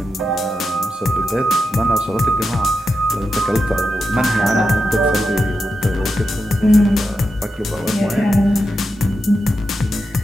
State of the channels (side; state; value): both; normal; correlation 0.88